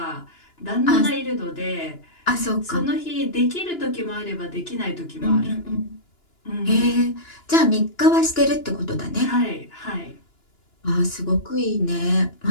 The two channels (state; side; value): late; right; 2.9 ms